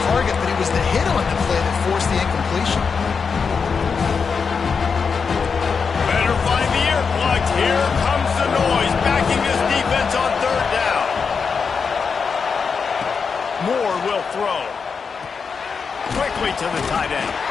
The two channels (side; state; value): right; quieter; 5.6 dB